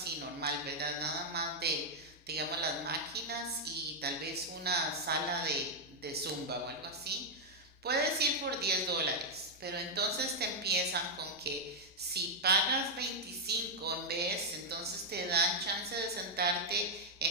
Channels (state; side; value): normal; both; correlation -0.03